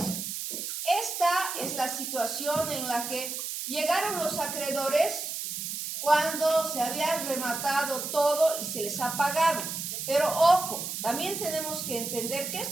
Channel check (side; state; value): right; noise; hiss, 5 dB below the sound